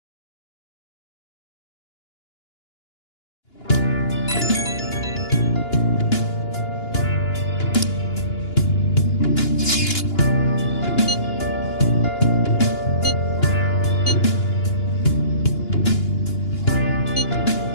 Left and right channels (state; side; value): late; right; 2.9 ms